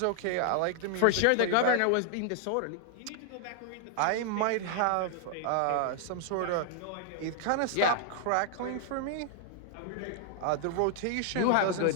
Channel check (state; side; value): different; both; correlation 0.00